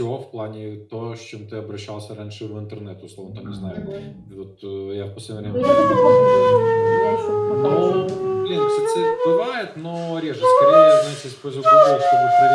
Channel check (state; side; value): identical; both; correlation 1.00